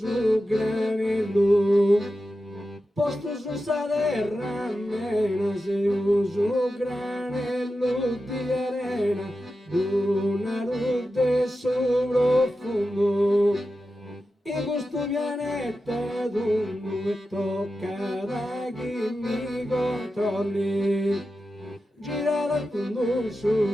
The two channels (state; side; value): normal; both; correlation 0.91